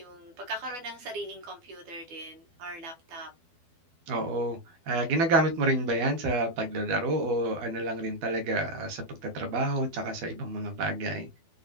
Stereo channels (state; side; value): late; left; 12 ms